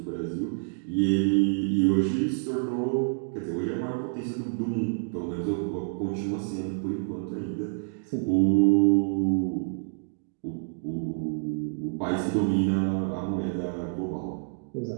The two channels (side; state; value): left; silent; digital silence